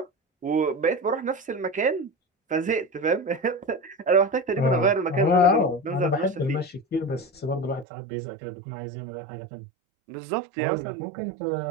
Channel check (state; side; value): drops out; left; at 7.9 s